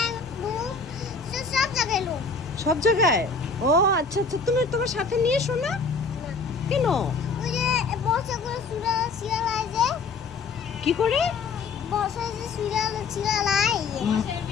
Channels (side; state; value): right; quieter; 4.5 dB